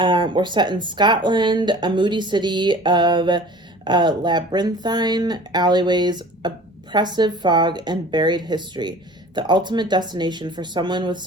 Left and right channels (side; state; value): both; normal; correlation 0.44